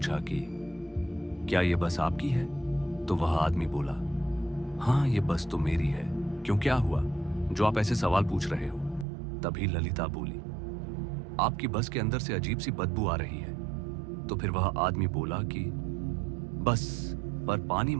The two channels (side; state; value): left; drops out; at 9.1 s